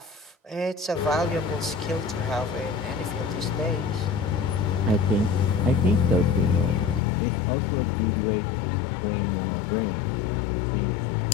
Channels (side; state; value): right; drops out; at 7.0 s